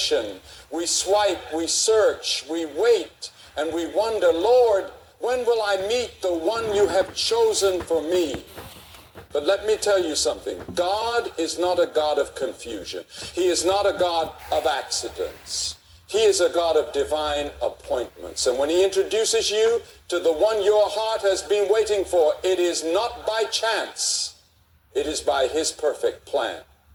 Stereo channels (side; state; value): both; identical; correlation 1.00